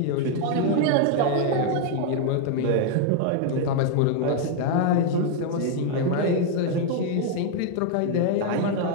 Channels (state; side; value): different; both; correlation 0.00